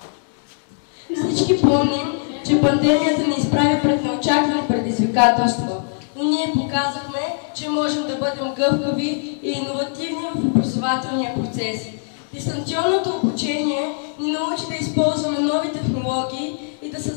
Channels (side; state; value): right; silent; 64 dB below the other